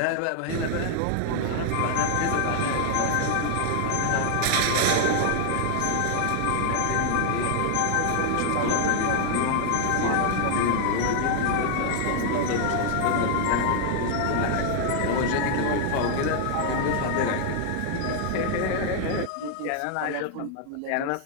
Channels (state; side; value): different; both; correlation 0.00